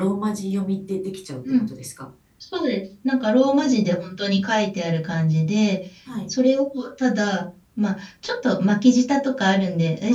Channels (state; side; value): identical; both; correlation 1.00